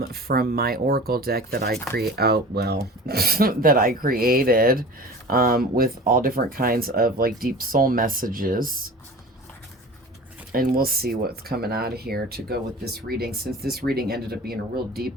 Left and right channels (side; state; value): both; normal; correlation 0.39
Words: my Oracle deck that I that I created with all different kinds of like deep soul messages. And we'll see what's coming out of here to go with this reading, since this reading ended up being a real deep